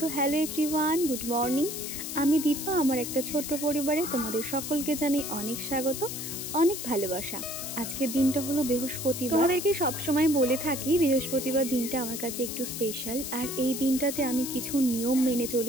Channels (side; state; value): left; noise; hiss, 6 dB below the sound